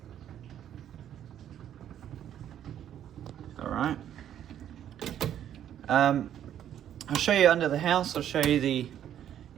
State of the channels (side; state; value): left; quieter; 10.4 dB